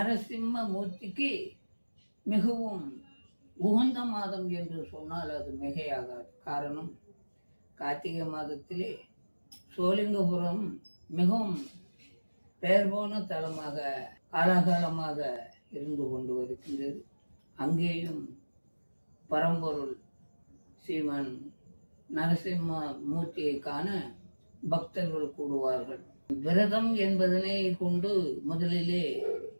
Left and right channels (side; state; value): both; inverted; correlation -1.00